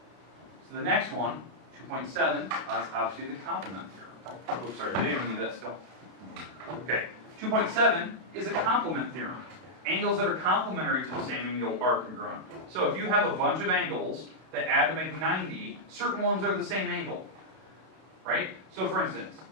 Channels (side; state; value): left; late; 32 ms